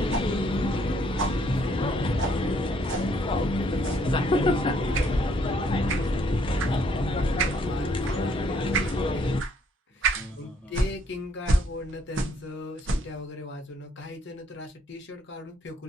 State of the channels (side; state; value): both; normal; correlation 0.66